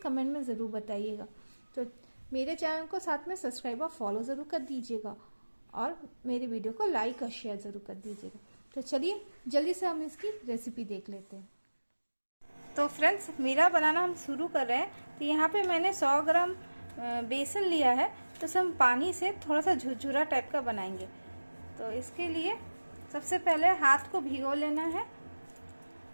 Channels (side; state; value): both; inverted; correlation -1.00